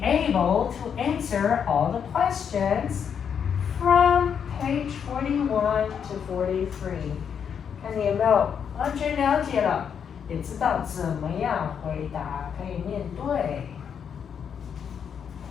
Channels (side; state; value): right; quieter; 7.5 dB